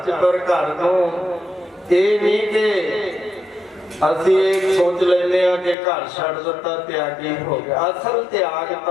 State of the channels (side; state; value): right; drops out; at 5.8 s